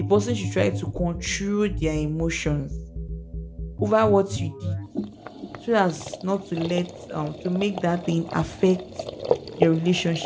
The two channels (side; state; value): both; identical; correlation 1.00